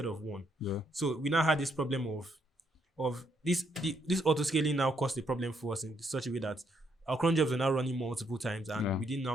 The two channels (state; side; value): normal; both; correlation 0.74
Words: of 1. Yeah. So we now had this problem of this auto scaling now caused a problem for us in such a way that our cron jobs are now running multiple times and we didn't